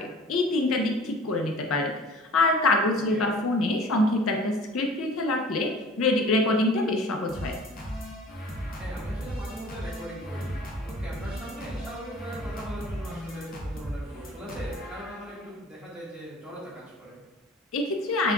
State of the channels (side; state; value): both; normal; correlation 0.46